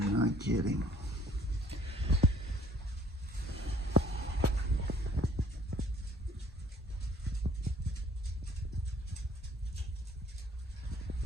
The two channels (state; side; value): normal; both; correlation 0.57